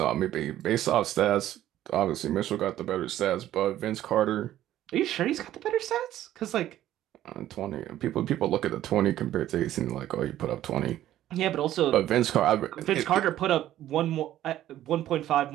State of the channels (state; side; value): quieter; left; 13.0 dB